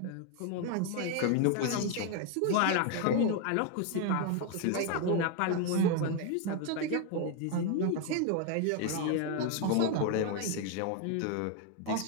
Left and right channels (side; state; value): both; different; correlation 0.01